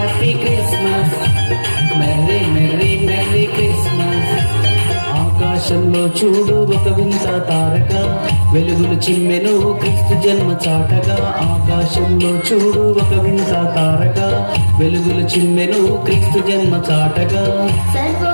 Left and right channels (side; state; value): both; inverted; correlation -1.00